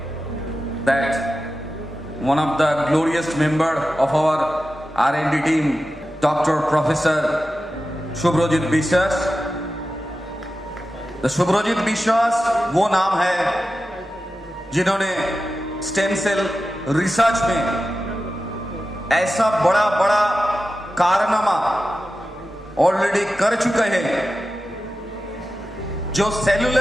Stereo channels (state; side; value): normal; both; correlation 0.93